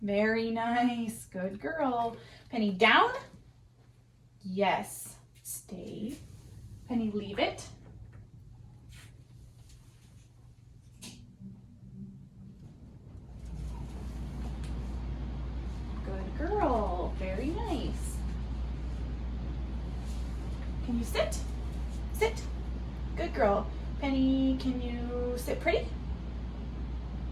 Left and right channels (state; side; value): identical; both; correlation 1.00